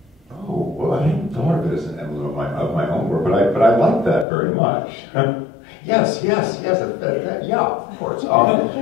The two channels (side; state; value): right; drops out; at 4.2 s